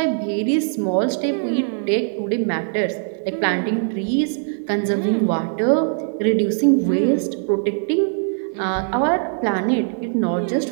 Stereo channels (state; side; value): silent; left; digital silence